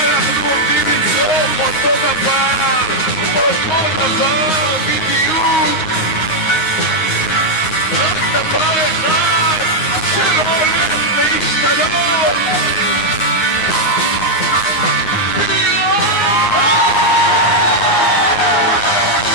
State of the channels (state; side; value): late; right; 9.7 ms